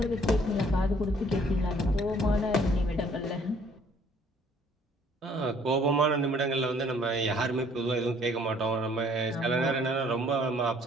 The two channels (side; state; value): both; normal; correlation 0.60